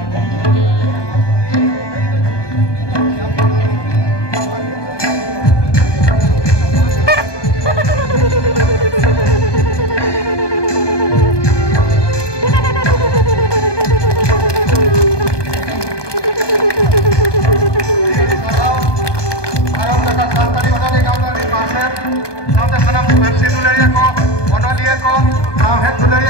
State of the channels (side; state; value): right; late; 1.2 ms